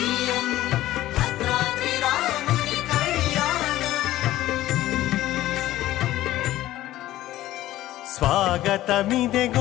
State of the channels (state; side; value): quieter; right; 15.0 dB